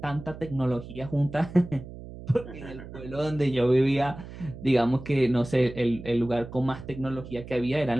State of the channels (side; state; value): right; noise; hum, 13 dB below the sound